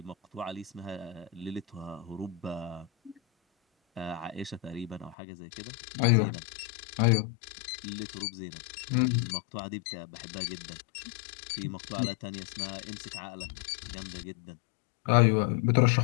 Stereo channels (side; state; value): right; drops out; at 5.2 s